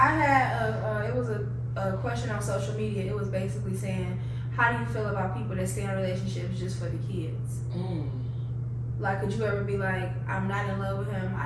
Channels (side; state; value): both; identical; correlation 1.00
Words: had it was a question on social media. It was basically saying, how do you feel about people that stay in relationships just for the kids? Like, could you ever be like, I'm not in love with him,